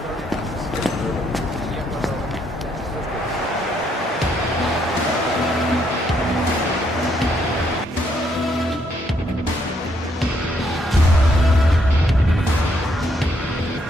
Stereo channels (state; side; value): normal; both; correlation 0.73